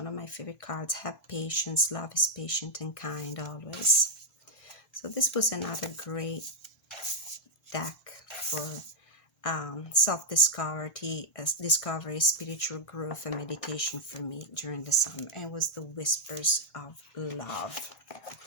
of my favorite cards. Have patience. Love is patient and kind always. So this was another great deck for self-discovery, discovery, spiritual growth, and meditation for me during the summer. And it was the Whispers of Love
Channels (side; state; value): right; late; 1.6 ms